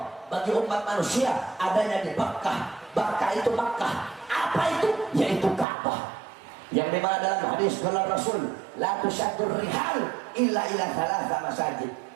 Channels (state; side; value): drops out; left; at 5.7 s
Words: bagi umat manusia adanya di Makkah. Makkah itu Makkah. Apa itu? Yaitu Ka'bah. Yang dimana dalam hadis qala Rasul, la tusaddur rihal illa ila thalatha masajid.